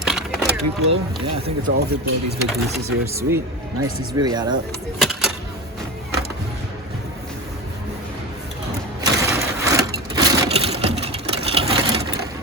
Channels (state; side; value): normal; both; correlation 0.24